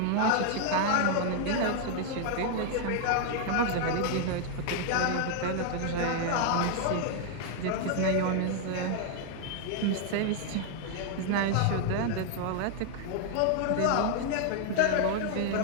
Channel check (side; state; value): both; different; correlation 0.00